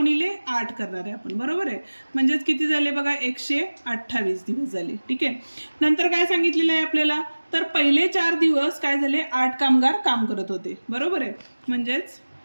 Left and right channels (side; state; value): both; inverted; correlation -1.00